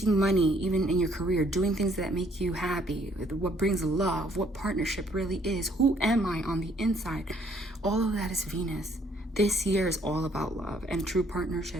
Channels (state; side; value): normal; both; correlation 0.65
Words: money, even in your career, doing things that make you happy, what brings love, what partnership really is, who am I on the inside? All of that is Venus. This year is all about love and true